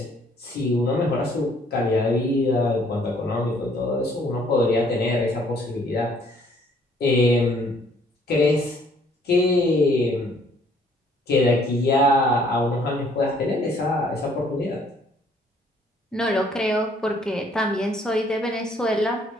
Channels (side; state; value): both; normal; correlation 0.62